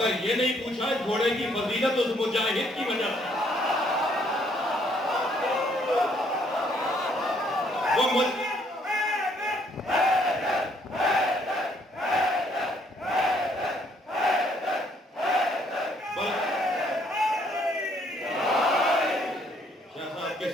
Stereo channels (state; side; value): normal; both; correlation 0.67